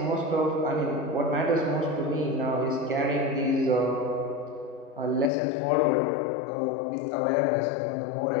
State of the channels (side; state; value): right; drops out; at 5.3 s